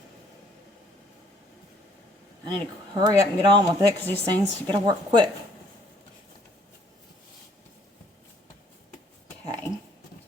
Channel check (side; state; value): both; normal; correlation 0.62